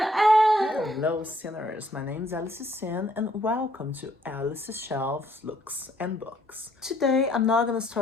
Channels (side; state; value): both; normal; correlation 0.66